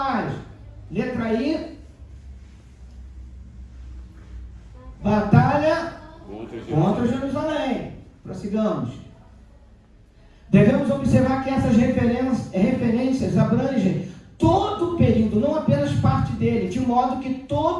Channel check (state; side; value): identical; both; correlation 1.00